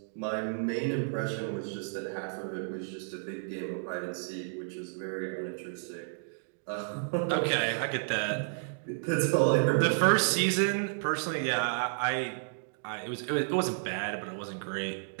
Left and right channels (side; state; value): left; silent; digital silence